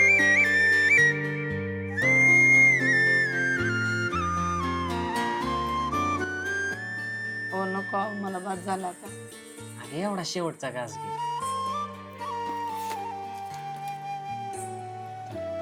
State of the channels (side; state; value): both; identical; correlation 1.00